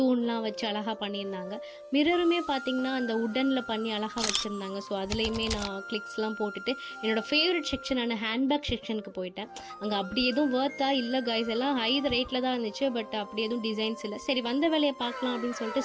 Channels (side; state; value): both; identical; correlation 1.00